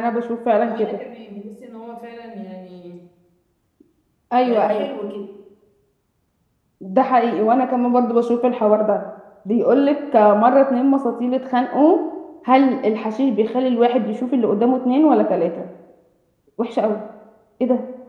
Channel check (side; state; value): both; identical; correlation 1.00